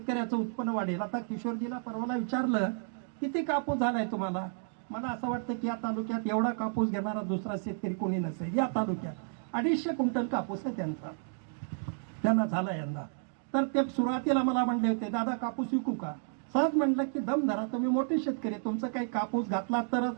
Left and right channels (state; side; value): silent; left; digital silence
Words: उत्पन्न वाढेल. आता किशोरजीला परवाला विचारलं, किती कापूस झालाय तुम्हाला? मला असं वाटतं की या तालुक्यात एवढा कापूस घेणारा दुसरा शेतकरी कोणी नसेल. या तालुक्यात 250 क्विंटल कापूस आहे त्यांना झाला यंदा. तर ते सुरुवातीला मला म्हणले होते, दादा कापूस विकू का? सहज म्हटलं की दम धरा, तुम्ही मोठे शेतकरी, तुमचं काही कापूस घातला तरच